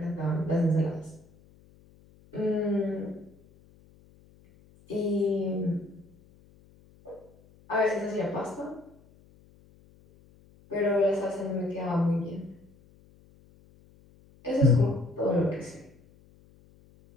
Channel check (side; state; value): left; noise; hum, 27 dB below the sound